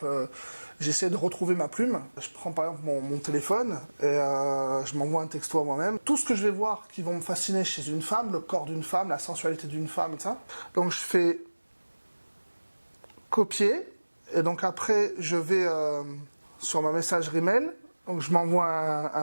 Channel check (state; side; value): inverted; both; correlation -1.00